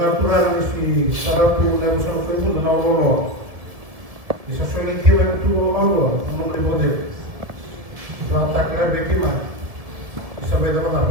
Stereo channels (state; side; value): late; left; 1.7 ms